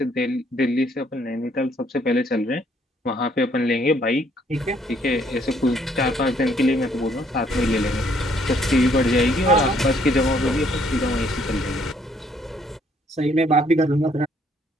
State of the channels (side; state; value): both; normal; correlation 0.66